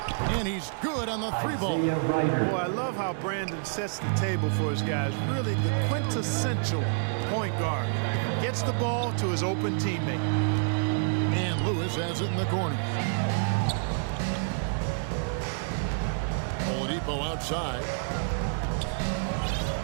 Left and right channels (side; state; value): left; silent; digital silence